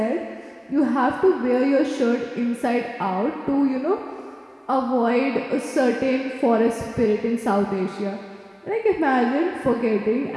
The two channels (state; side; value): identical; both; correlation 1.00